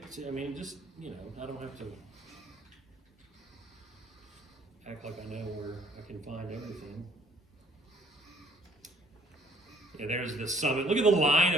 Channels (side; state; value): both; normal; correlation 0.59